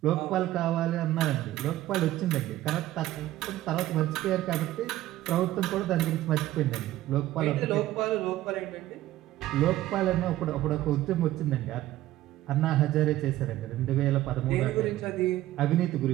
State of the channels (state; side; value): quieter; left; 14.8 dB